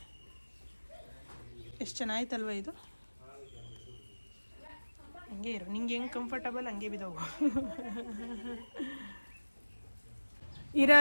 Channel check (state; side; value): inverted; both; correlation -1.00